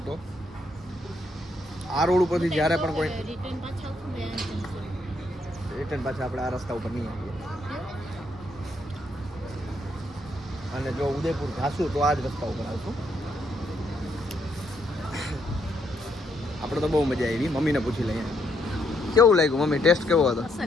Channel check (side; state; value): both; normal; correlation 0.74